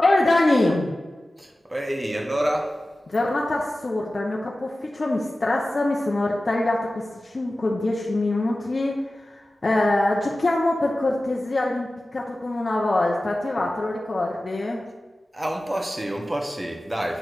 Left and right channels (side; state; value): both; normal; correlation 0.96